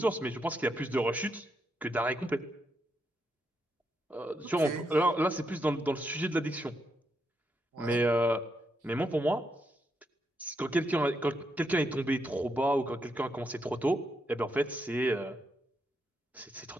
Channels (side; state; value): both; normal; correlation 0.81